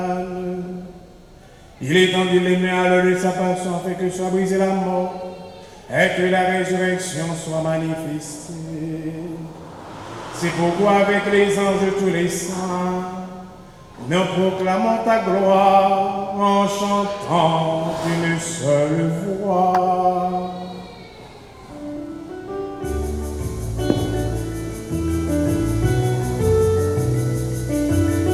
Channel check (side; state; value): both; identical; correlation 1.00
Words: Il étendit les mains à l'heure de sa passion afin que soit brisée la mort et que la résurrection soit manifestée. C'est pourquoi avec les anges de tous les saints, nous proclamons ta gloire en chantant d'une seule voix.